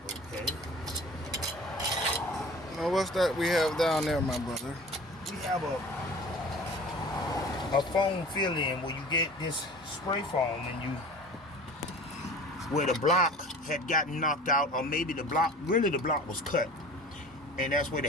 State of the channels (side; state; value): both; normal; correlation 0.41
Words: okay. Now what's that we have down there, my brother? We have a foam fill-in where you get this spray foam and you, where the block had gotten knocked out, or maybe the block was cut, and that's where the